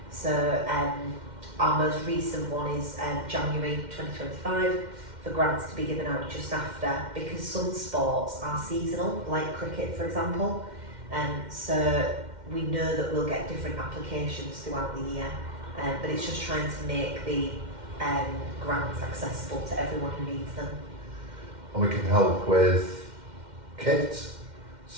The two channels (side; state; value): left; late; 2.1 ms